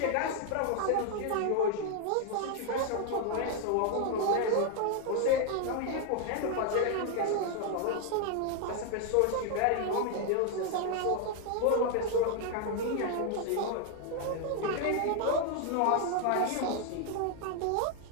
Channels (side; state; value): both; different; correlation 0.00